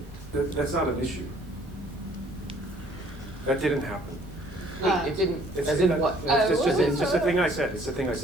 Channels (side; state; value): both; normal; correlation 0.58